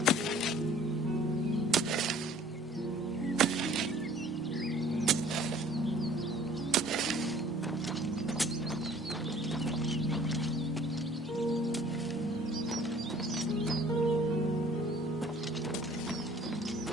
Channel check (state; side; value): normal; both; correlation 0.53